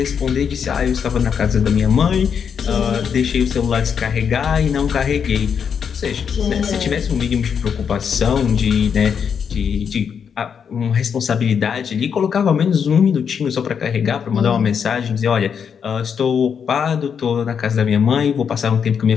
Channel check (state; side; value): quieter; right; 7.1 dB